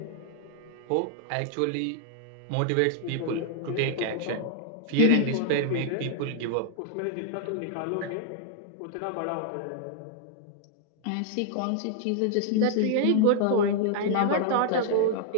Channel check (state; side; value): different; both; correlation -0.01